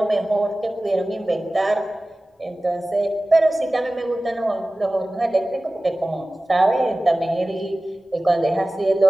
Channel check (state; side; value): normal; both; correlation 0.97